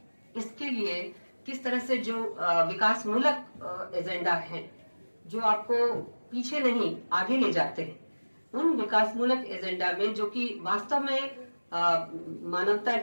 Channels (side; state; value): both; inverted; correlation -1.00